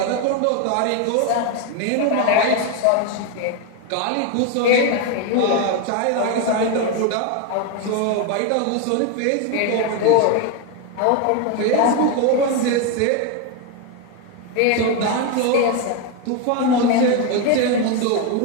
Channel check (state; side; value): different; both; correlation 0.02